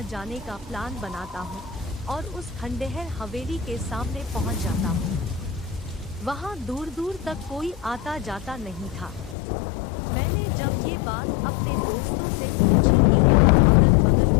जाने का प्लान बनाता हूं और उस खंडहर हवेली के सामने पहुंच जाता हूं। वहां दूर दूर तक कोई आता जाता नहीं था। मैंने जब ये बात अपने दोस्तों से पूछी कि यहाँ अगल बगल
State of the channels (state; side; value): drops out; right; at 9.3 s